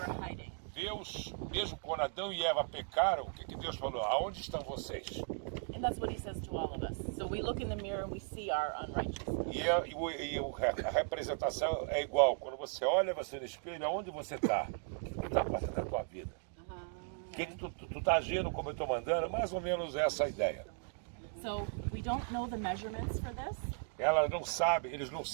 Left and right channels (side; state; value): left; silent; 53 dB below the other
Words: were hiding. Deus, mesmo quando Adão e Eva pecaram, o que Deus falou? Aonde estão vocês? And that's what He says to all of us. So we look in the mirror and we see our unrighteousness. A representação é igual. Quando você olha você no espelho, aonde você está? O que está fazendo na tua vida? O que tu está agindo como eu estou mandando? Mais ou menos essa a ideia. So we don't know the measurements for this. Eles não